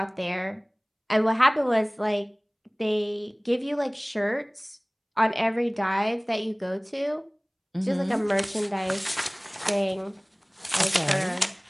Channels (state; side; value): identical; both; correlation 1.00